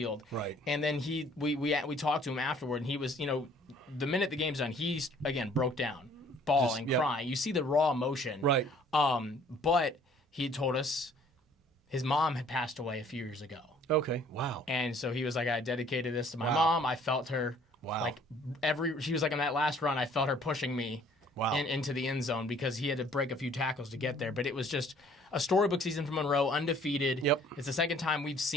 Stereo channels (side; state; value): both; normal; correlation 0.57